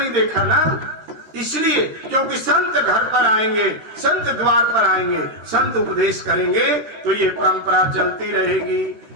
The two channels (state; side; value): late; left; 13 ms